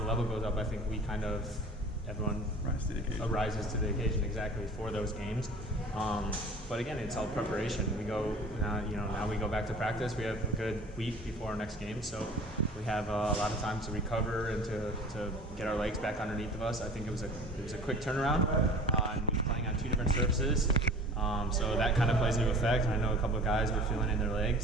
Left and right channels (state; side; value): normal; both; correlation 0.43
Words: level goes up, I think we everyone rises to the occasion exactly for those games. But again, it's all preparation. We go now we go back to practice. We have a good week before our next game, so we have a lot of time to recover and to get our legs back underneath of us. I think it was a quick turnaround, and we were playing on two different surfaces, so that kind of plays into effect. I know a couple of guys were feeling in their